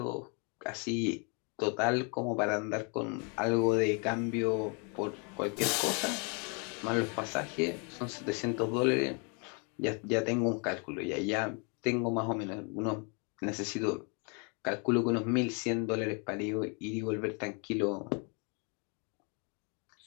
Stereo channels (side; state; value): right; quieter; 35.7 dB